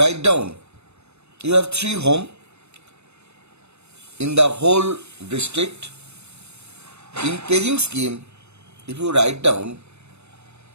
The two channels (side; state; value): left; late; 0.81 ms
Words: have 3 homes in the whole district. In paging scheme, if you write down